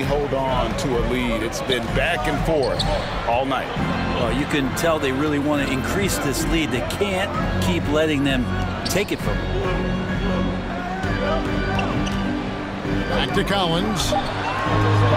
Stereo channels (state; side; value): identical; both; correlation 1.00